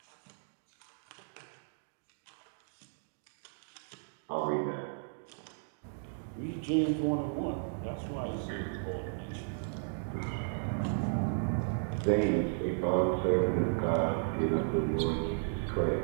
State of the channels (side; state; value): left; silent; digital silence